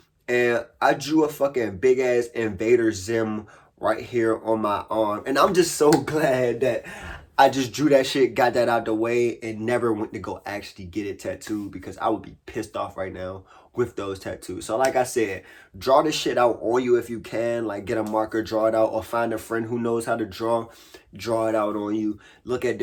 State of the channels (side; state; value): both; identical; correlation 1.00